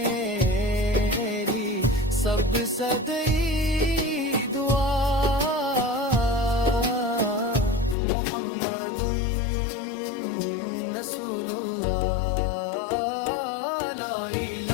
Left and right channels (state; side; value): drops out; right; at 8.0 s